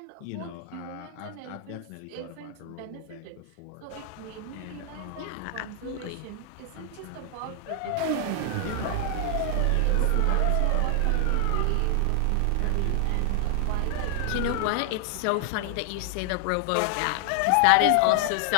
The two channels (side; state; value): both; different; correlation 0.00